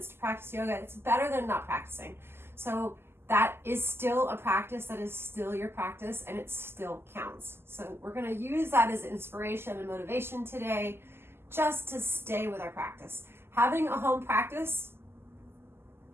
to practice yoga, it's better than not practicing. So that is still a practice, that is still your practice, and it still counts. So we're going to use that as inspiration and motivation today, just to stay with our practice. Having a home practice,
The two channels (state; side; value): late; left; 0.12 ms